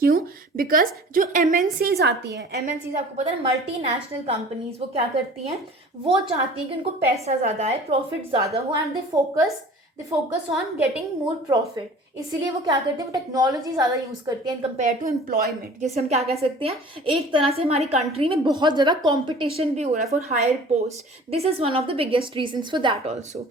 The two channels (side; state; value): both; normal; correlation 0.45